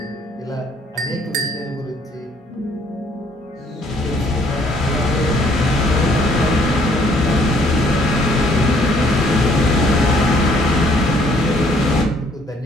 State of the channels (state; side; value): normal; both; correlation 0.63